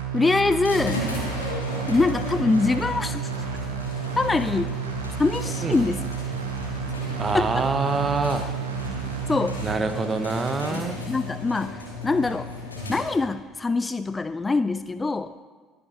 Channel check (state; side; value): normal; both; correlation 0.70